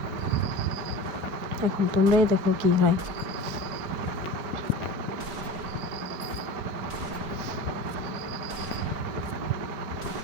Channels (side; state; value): left; late; 4.5 ms